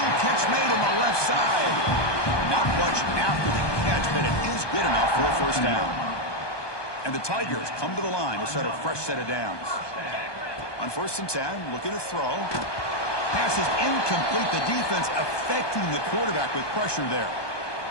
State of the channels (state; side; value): late; right; 1.2 ms